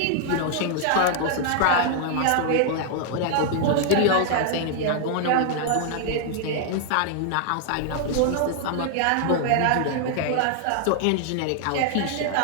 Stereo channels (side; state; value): both; different; correlation 0.00